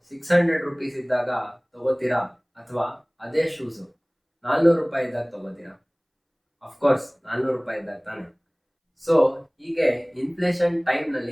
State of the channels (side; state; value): both; identical; correlation 1.00